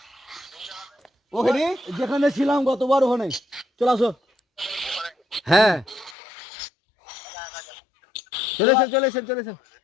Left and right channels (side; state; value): right; drops out; at 6.2 s